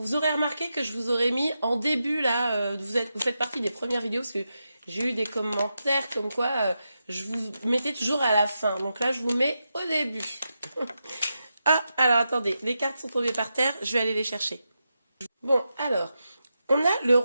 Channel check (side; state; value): both; inverted; correlation -0.88